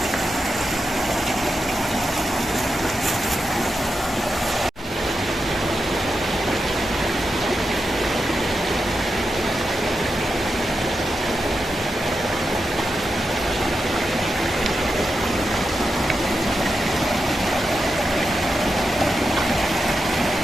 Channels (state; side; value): normal; both; correlation 0.88